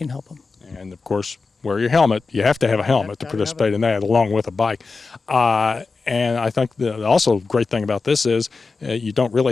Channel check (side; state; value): right; quieter; 4.2 dB